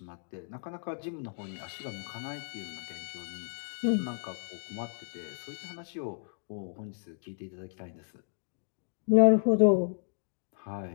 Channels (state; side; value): silent; right; digital silence